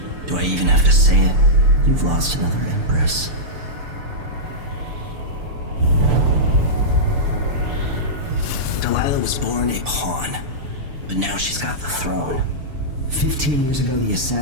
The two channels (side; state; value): left; late; 6.9 ms